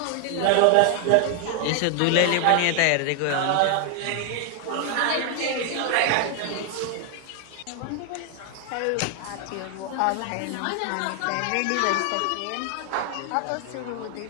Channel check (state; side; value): different; both; correlation 0.00